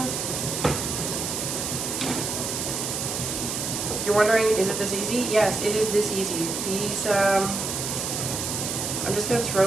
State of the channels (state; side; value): noise; right; hiss, 3 dB below the sound